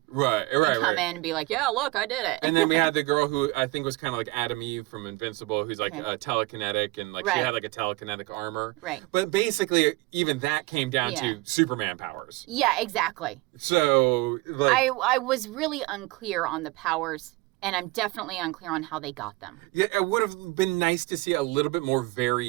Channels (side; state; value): left; quieter; 22.2 dB